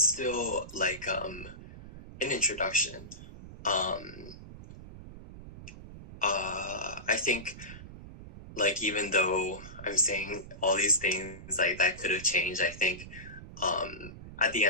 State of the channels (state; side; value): noise; right; rumble, 14 dB below the sound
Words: still like an introduction. I think like even though I'm saying all these things like that could have changed, I think at the